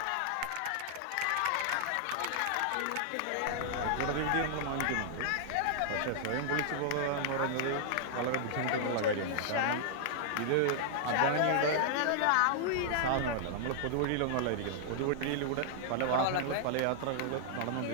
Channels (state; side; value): different; both; correlation -0.01